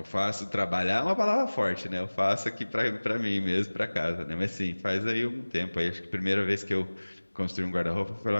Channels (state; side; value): inverted; both; correlation -1.00